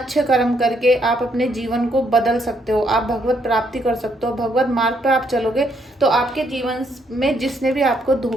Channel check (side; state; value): both; normal; correlation 0.73